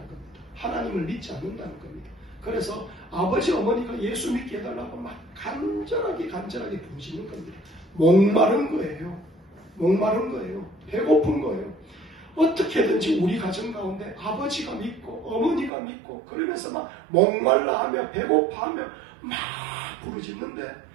하나님을 믿지 않는다는 겁니다. 그래서 아버지, 어머니가 예수 믿게 해달라고 막 간절하게 부르시는 겁니다. 목마른 거예요. 배고픈 거예요. 어떻게든지 우리 가정 가운데 아버지가 믿고 어머니가 믿고 그러면서 막 목말라하며 배고파하며 막 부르짖는데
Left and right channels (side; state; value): left; drops out; at 15.7 s